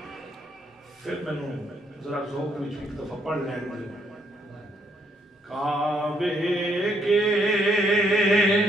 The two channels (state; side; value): normal; both; correlation 0.72